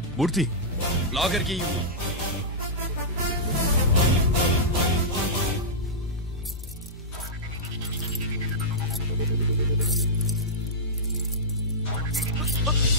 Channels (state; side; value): normal; both; correlation -0.12